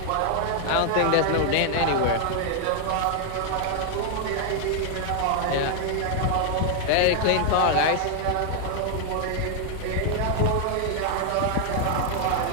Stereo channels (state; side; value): different; both; correlation 0.00